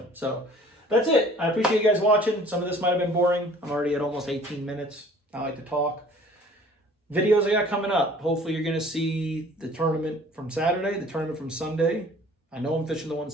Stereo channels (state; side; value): normal; both; correlation 0.51